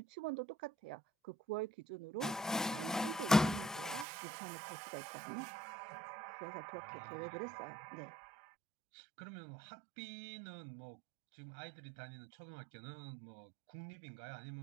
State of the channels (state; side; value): drops out; left; at 4.0 s